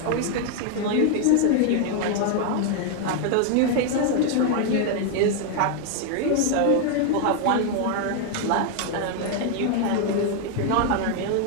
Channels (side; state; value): both; different; correlation 0.00